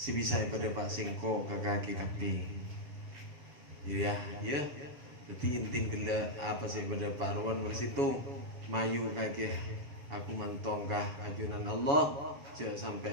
bisa pada pasingko ke kaki kapi jiriah ya jadi intin gila apa sih pada paruan bersitung mayu kaki aku mantongkah ajunan Allah sampai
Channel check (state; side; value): late; left; 7.1 ms